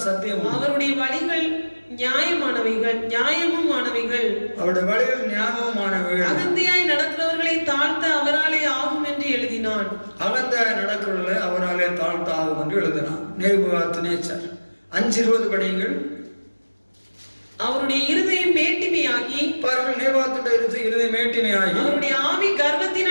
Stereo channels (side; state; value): both; inverted; correlation -1.00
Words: அவருடைய வழிகள் நியாயமுமானவைகள் அகந்தையாய் நடக்கிறவர்களை தாழ்த்த அவராலே ஆகும் என்று எழுதினான். நேபுகாத்நேச்சார் 5:20 படியுங்கள். அவருடைய இருதயம் மேட்டிமையாகி அவருடைய ஆவி